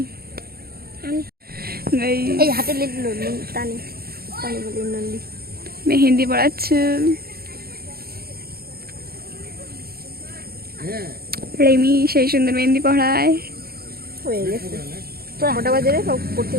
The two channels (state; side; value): late; left; 0.44 ms